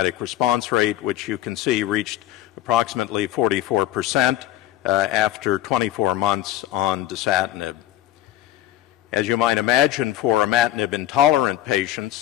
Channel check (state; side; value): quieter; right; 13.4 dB